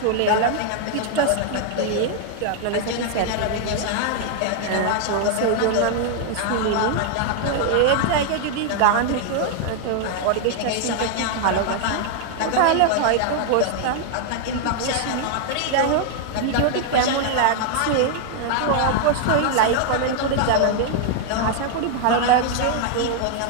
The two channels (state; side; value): different; both; correlation 0.00